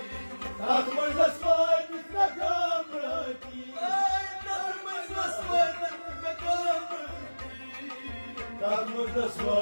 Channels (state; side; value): inverted; both; correlation -1.00